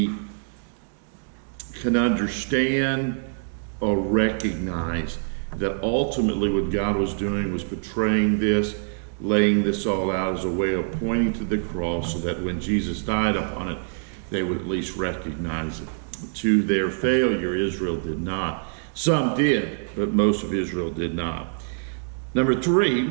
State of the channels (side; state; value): left; silent; digital silence